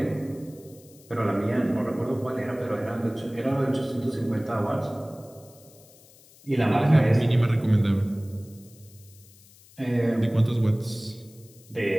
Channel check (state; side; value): noise; left; hiss, 25 dB below the sound